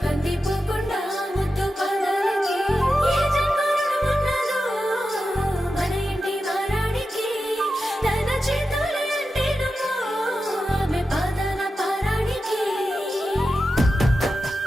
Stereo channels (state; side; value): normal; both; correlation 0.91